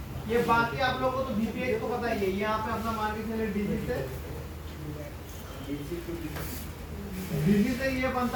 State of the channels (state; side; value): identical; both; correlation 1.00